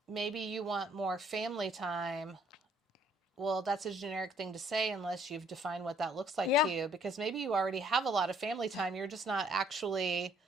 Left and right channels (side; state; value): both; normal; correlation 0.63